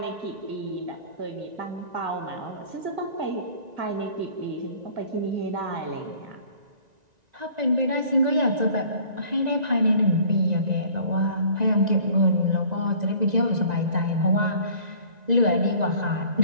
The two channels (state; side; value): late; left; 1.9 ms